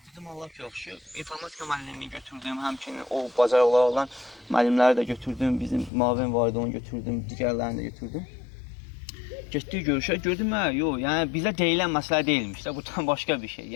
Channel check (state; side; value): drops out; right; at 5.9 s